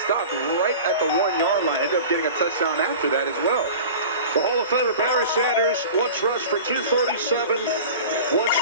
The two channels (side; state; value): both; inverted; correlation -0.37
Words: right at the 1-yard line. Ended up getting a touchdown after that as well. The Hall of Famer Barry Sanders once rushed for 237, once